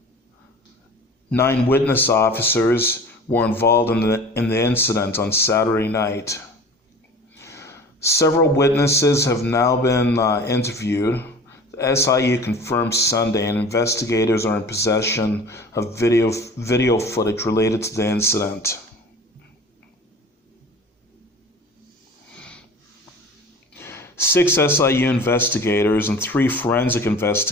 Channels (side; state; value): both; normal; correlation 0.42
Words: witness officers were involved in the incident on Saturday night. Several witnesses have now been interviewed. The SIU confirmed Sunday, and investigators are in possession of video footage related to the incident. Six SIU investigators and 3 forensic